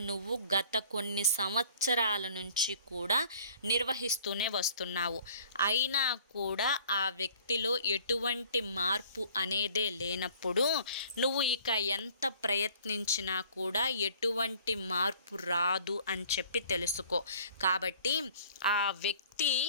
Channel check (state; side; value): inverted; both; correlation -0.52